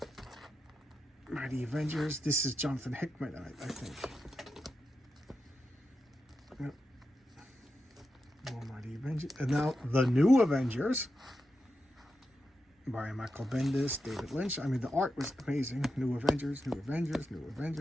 Mighty Avengers. This is Jonathan Hickman, I think. Yep. More Mighty Avengers. And now the New Avengers by Michael Bendis, David Lynch. I mean, the art was amazing. New Avengers, New Avengers, New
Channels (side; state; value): both; normal; correlation 0.88